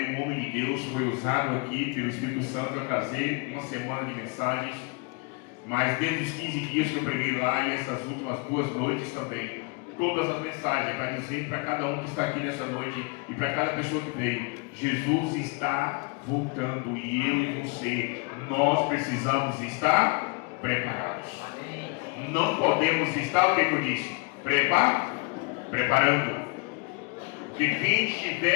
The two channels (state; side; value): quieter; right; 29.7 dB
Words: um homem de Deus, foi usado aqui pelo Espírito Santo para trazer uma semana de mensagens. Mas desde os 15 dias que eu preguei lá e essas últimas 2 noites também, todas as mensagens para dizer para cada um que está aqui nessa noite e para cada pessoa que veio, Jesus está voltando e eu e você, nós precisamos estar preparados. Não podemos estar, o que eu disse? Preparando. Porque quem